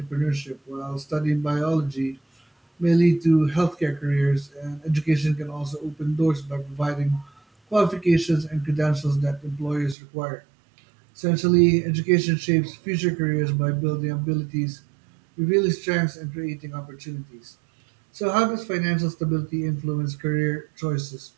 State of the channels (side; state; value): left; drops out; at 10.0 s